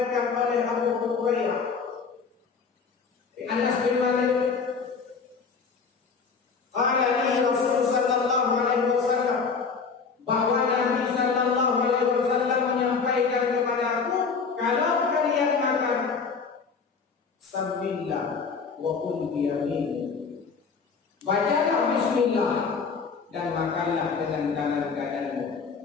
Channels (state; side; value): quieter; right; 5.3 dB